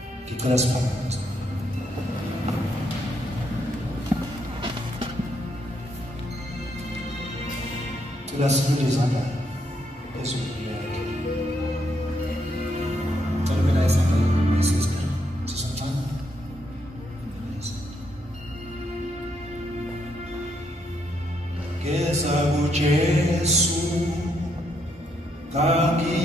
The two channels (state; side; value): normal; both; correlation 0.76